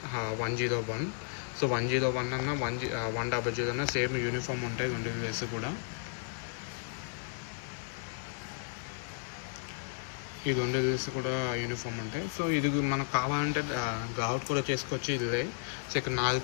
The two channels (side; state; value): right; silent; digital silence